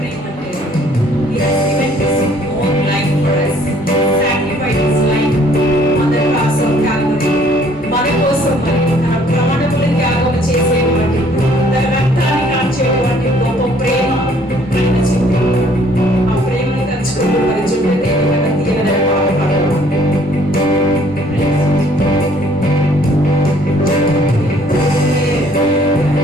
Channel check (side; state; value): both; normal; correlation 0.60